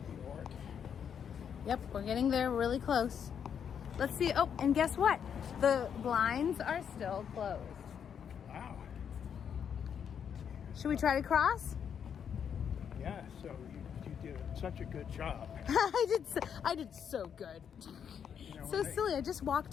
New York. Yep, we're getting there really close. Let's see. Oh, and guess what? The blinds are still closed. Wow. Should we try to cross? Yeah, so you did such a good job. I did so good. You know, So silly. I just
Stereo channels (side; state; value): right; quieter; 7.9 dB